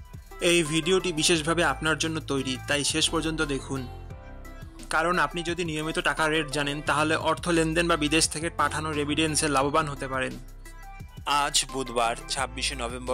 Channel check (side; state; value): both; identical; correlation 1.00